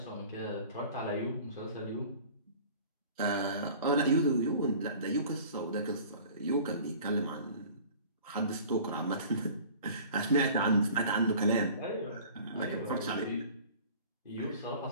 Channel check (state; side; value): inverted; both; correlation -0.45